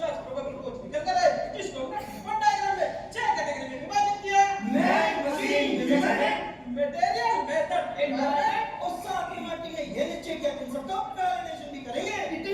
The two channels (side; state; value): both; identical; correlation 1.00